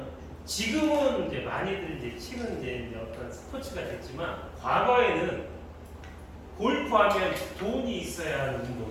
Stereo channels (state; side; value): identical; both; correlation 1.00